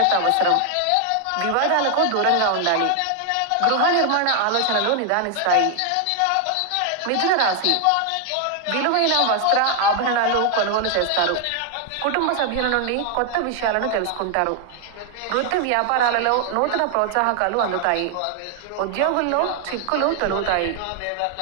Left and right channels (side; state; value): both; different; correlation 0.00